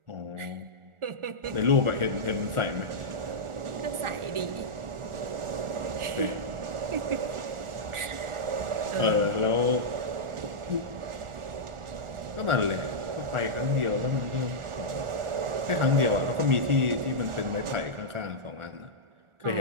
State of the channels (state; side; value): late; left; 1.4 ms